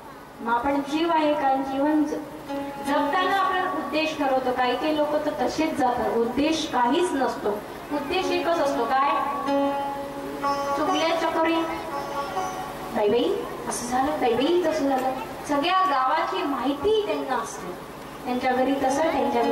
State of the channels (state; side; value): identical; both; correlation 1.00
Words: मग आपण जीव आहे का? जीवन जगताना आपण उद्देश ठरवतो. काही काही लोक तर तसेच जातात. उद्देश काहीच नसतो. उद्देश एकच असतो. काय? चुकल्या चकोरी बाई असं झालं, बाई तसं झालं. सगळ्या गावाची माहिती त्यांना असते. त्यांच्या घरी तसं, त्यांच्या